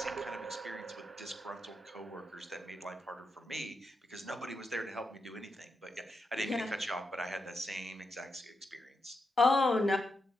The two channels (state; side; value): normal; both; correlation 0.85